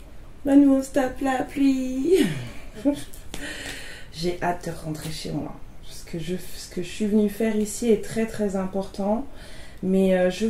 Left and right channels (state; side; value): identical; both; correlation 1.00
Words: Bah nous on se tape la pluie. J'ai hâte de rentrer chez moi. Ce que je suis venue faire ici est très très important. Mais je